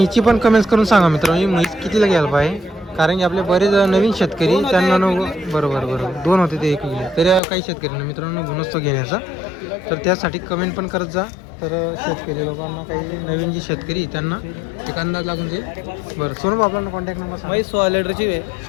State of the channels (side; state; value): right; drops out; at 7.4 s